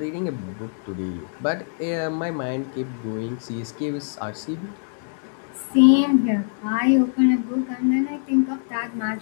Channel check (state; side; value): silent; right; digital silence